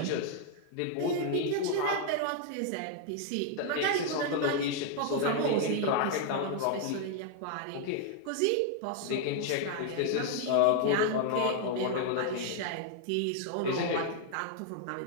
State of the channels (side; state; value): both; different; correlation 0.00